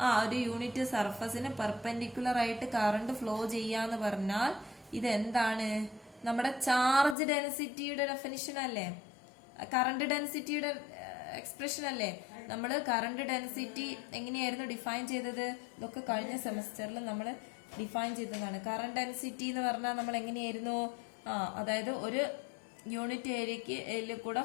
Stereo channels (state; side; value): drops out; right; at 7.2 s